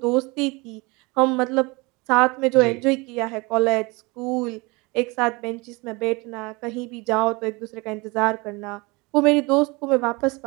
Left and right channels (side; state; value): left; quieter; 26.0 dB